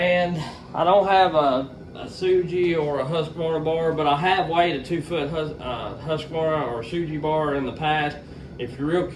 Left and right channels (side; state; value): both; identical; correlation 1.00